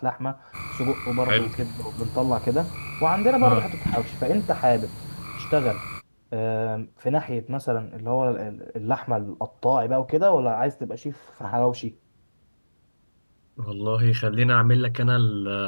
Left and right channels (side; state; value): both; inverted; correlation -1.00